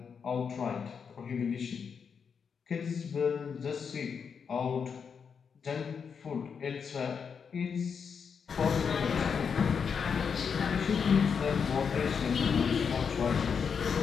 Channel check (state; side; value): quieter; right; 6.4 dB